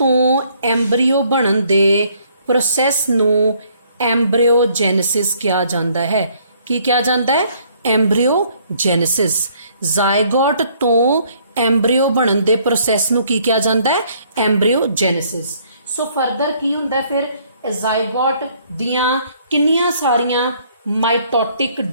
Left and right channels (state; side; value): inverted; both; correlation -0.64